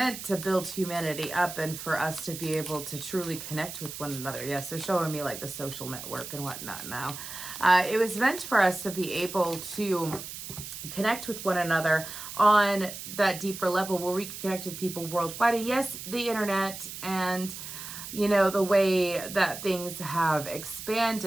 to build humanity up and for us to be able to truly connect with one another. Yes, they're showing me like the social network and whatnot now. It was meant for us to be able to connect with one another on that deeper level where we can connect with people worldwide. And yes, the internet and, you know, the way that things have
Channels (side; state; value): right; noise; hiss, 10 dB below the sound